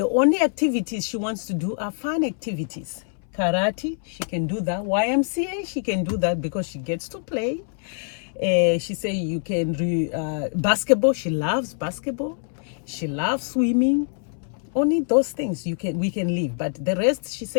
only activities she wants to do are fun activities. Karate, she can do that. YMCA, she can do that because she gets to play. She said you can basketball. She loves basketball. She loves swimming. Only those things we can leave, but the rest, she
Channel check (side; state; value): right; silent; 62 dB below the other